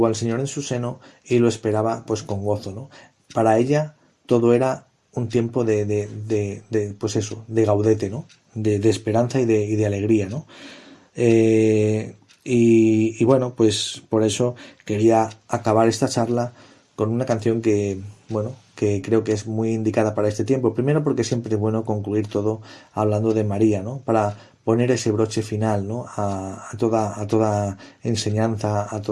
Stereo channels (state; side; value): identical; both; correlation 1.00